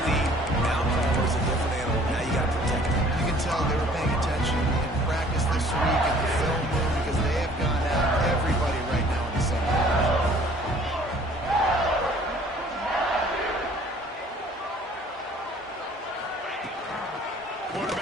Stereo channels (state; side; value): normal; both; correlation 0.54